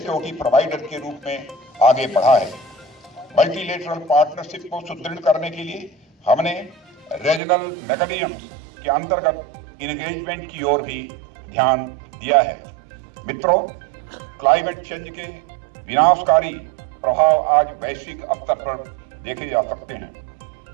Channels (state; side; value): drops out; left; at 7.4 s